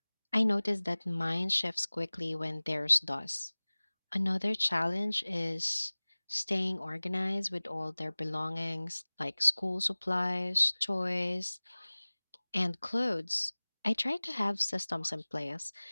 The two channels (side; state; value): both; inverted; correlation -1.00